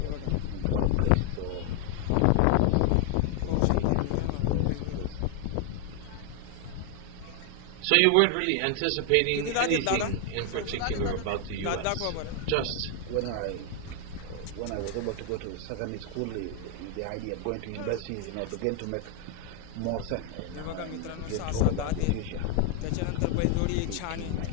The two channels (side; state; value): both; different; correlation 0.00